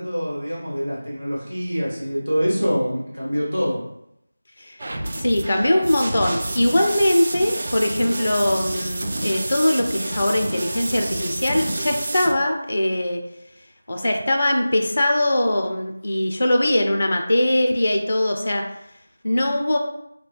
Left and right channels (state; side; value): inverted; both; correlation -0.96